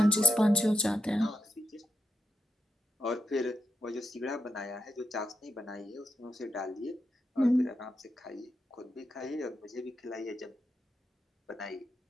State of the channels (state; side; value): normal; both; correlation 0.85